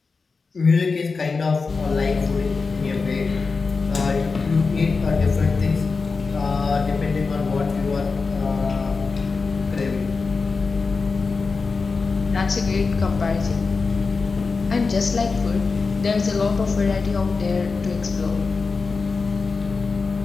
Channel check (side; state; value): right; quieter; 4.4 dB